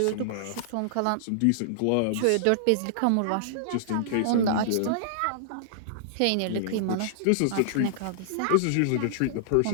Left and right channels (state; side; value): different; both; correlation -0.01